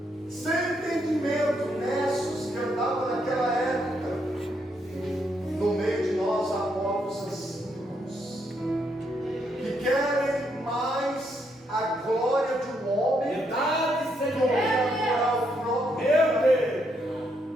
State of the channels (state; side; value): normal; both; correlation 0.76